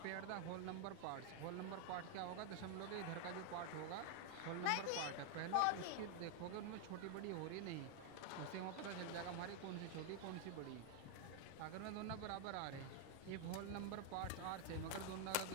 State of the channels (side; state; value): both; different; correlation 0.00